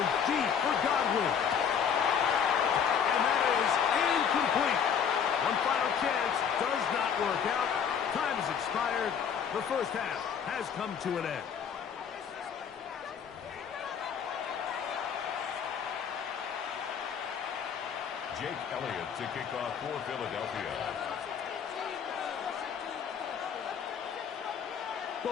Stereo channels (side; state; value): right; quieter; 7.5 dB